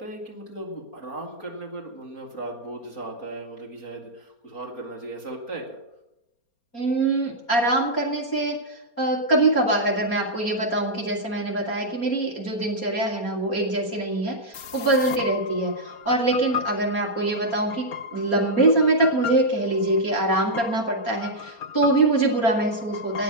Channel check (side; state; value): right; late; 4.3 ms